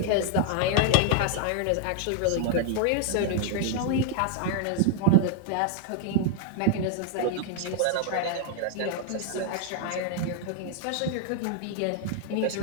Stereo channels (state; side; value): different; both; correlation 0.00